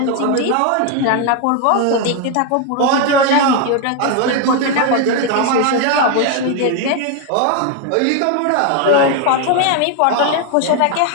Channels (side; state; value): both; different; correlation 0.01